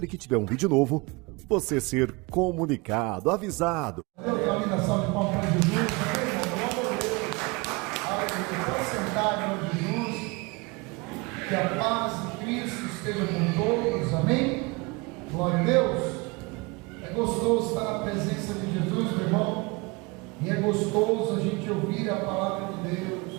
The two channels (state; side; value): quieter; left; 26.7 dB